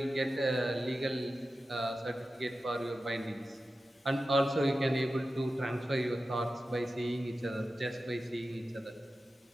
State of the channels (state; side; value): normal; both; correlation 0.93